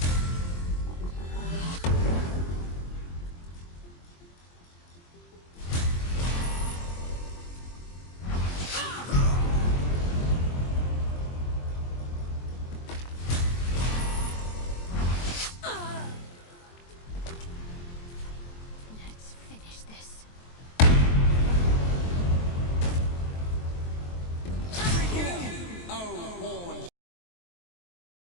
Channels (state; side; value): late; right; 23 ms